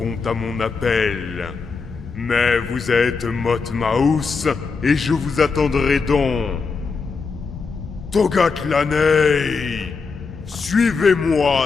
à mon appel. Mais vous êtes Motmaus et je vous attendrai donc. Togatlanei,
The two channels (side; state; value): right; quieter; 4.8 dB